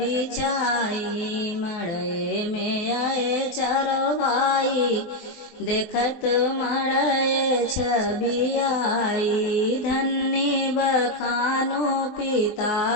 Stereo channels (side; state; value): right; late; 23 ms